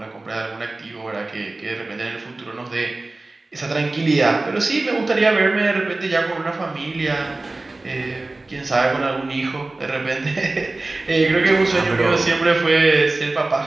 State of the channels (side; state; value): left; quieter; 3.1 dB